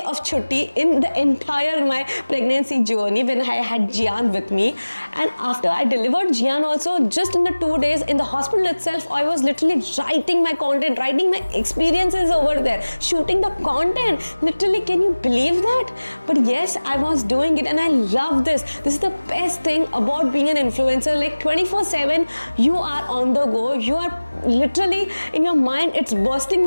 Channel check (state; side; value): inverted; both; correlation -1.00